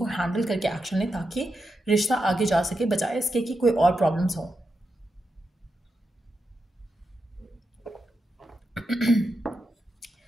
हैंडल करके एक्शन लें, ताकि रिश्ता आगे जा सके, बजाय इसके कि कोई और प्रॉब्लम्स हों।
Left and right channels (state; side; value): normal; both; correlation 0.87